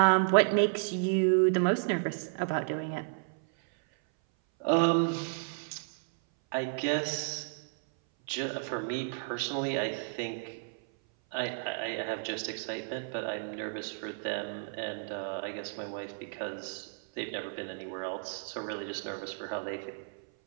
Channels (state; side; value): silent; left; 56 dB below the other